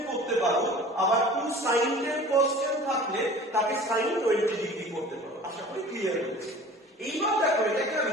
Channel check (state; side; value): normal; both; correlation 0.43